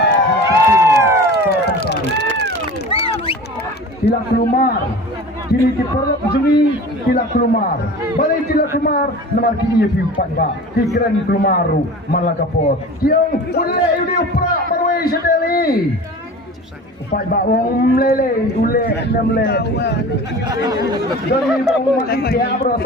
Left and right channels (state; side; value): normal; both; correlation 0.37